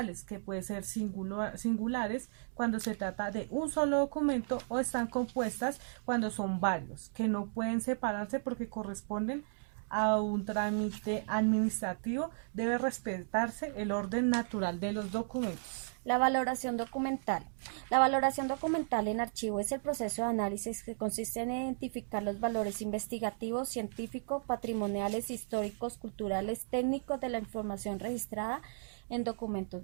que pueden ser singulares cuando se trata de un solo documento, o están compuestas cuando son varios, que no pueden separarse porque corresponden a un trámite administrativo. Debe respetarse el orden natural de los documentos. La valoración documental. La valoración documental en archivo es el proceso de análisis que consiste en identificar los valores investigativos, científicos, patrimoniales, históricos, culturales, técnicos de la información registrada en documentos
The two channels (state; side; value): silent; left; digital silence